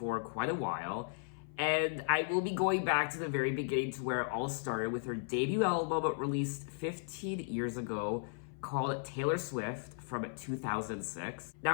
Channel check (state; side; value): silent; right; 54 dB below the other